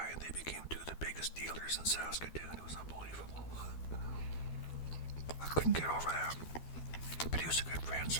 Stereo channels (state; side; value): late; right; 12 ms